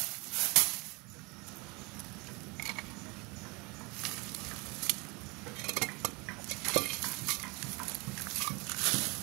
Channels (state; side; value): quieter; left; 27.5 dB